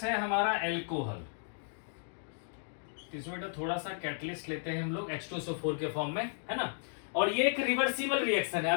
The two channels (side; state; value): right; silent; digital silence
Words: है हमारा एल्कोहल। इसमें बेटा थोड़ा सा कैटलिस्ट लेते हैं हम लोग H2SO4 के फॉर्म में, है ना। और ये एक रिवर्सिबल रिएक्शन है,